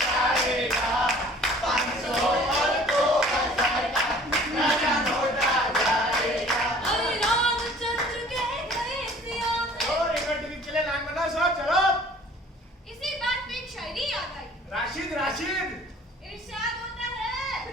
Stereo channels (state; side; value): normal; both; correlation 0.51